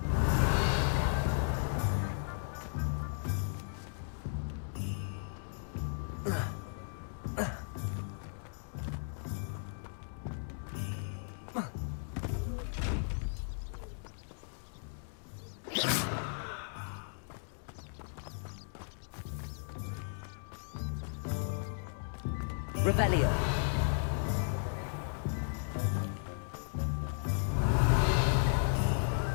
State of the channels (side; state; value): right; silent; digital silence